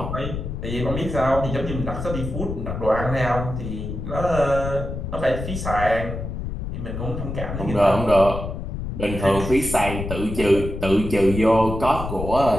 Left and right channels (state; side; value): noise; left; rumble, 6 dB below the sound